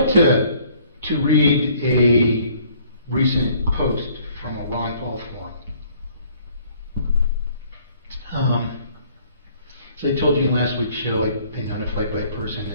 to read a recent post from a Ron Paul forum. As I told you in last week's show, I've been notified by a person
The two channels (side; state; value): both; inverted; correlation -0.59